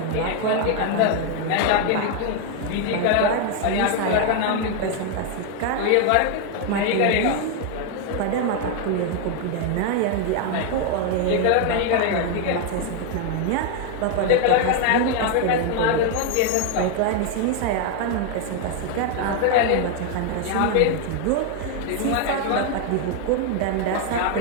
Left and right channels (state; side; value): different; both; correlation 0.01